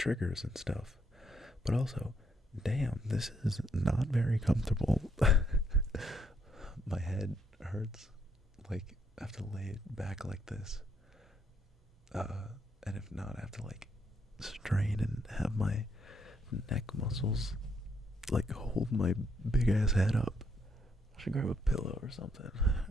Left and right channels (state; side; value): normal; both; correlation 0.74